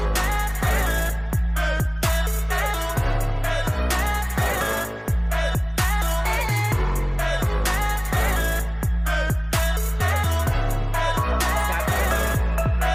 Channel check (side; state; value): both; identical; correlation 1.00